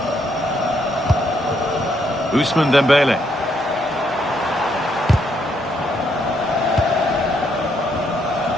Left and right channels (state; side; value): normal; both; correlation 0.74